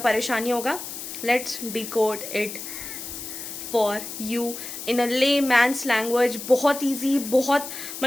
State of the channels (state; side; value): noise; left; hiss, 9 dB below the sound